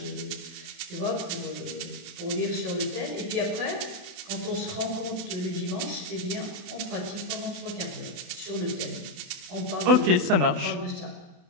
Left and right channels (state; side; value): late; left; 28 ms